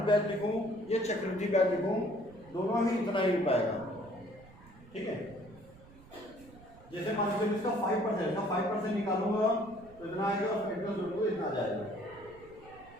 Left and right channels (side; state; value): right; noise; rumble, 22 dB below the sound